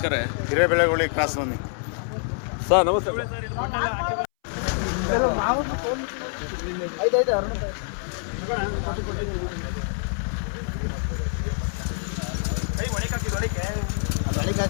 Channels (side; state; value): right; silent; 61 dB below the other